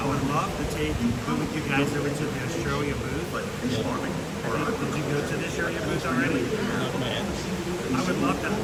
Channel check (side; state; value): both; identical; correlation 1.00